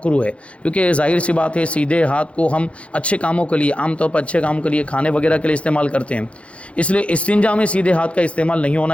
ہے، کیونکہ ظاہر سی بات ہے سیدھے ہاتھ کو ہم اچھے کاموں کے لیے، عام طور پر اچھے کاموں کے لیے، کھانے وغیرہ کے لیے استعمال کرتے ہیں، اس لیے استنجا میں سیدھے ہاتھ کا استعمال نہیں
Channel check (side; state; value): right; late; 0.062 ms